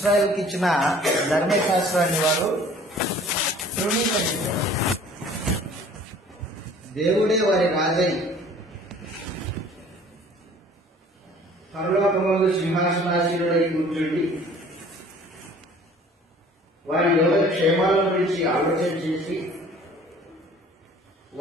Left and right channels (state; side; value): normal; both; correlation 0.51